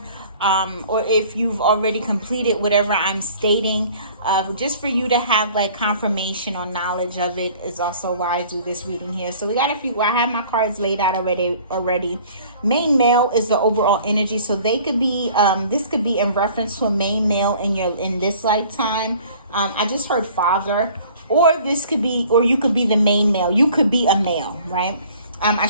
or if you've already completed whatever I'm stating, just for you to have like confirmation or knowledge of it is also why I do this reading here. So we got a few. I have my cards laid out already. Main male is the overall energy, so they could be this could be in reference to a main male in this lifetime. I just heard father, or this could be, or you could be the main male. You could be a male, right?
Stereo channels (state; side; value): inverted; both; correlation -0.51